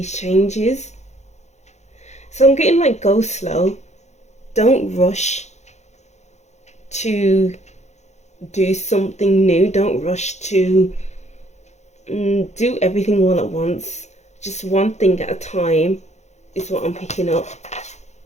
changes. So I'm getting like, go slow. Don't rush to do something new. Don't rush to do everything all at once. Just one thing at a time is what I'm picking up.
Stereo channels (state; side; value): late; right; 0.33 ms